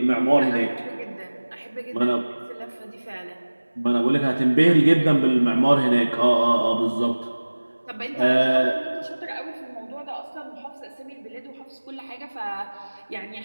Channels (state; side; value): inverted; both; correlation -1.00